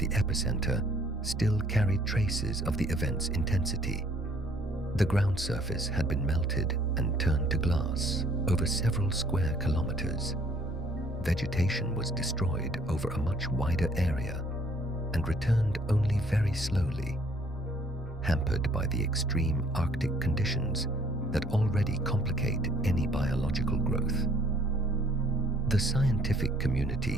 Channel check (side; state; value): both; normal; correlation 0.61